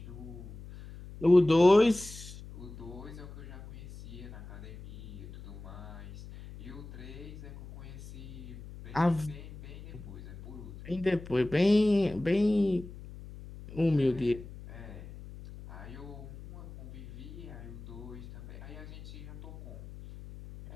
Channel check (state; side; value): noise; left; hum, 14 dB below the sound